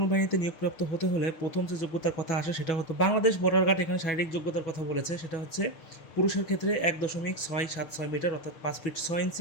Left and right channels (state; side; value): late; right; 6.6 ms